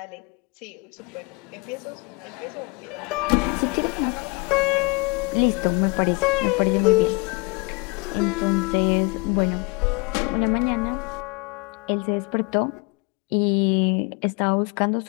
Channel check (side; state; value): right; quieter; 28.6 dB